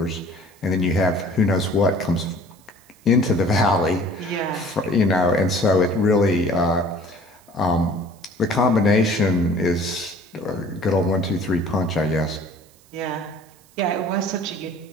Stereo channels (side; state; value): right; noise; hiss, 29 dB below the sound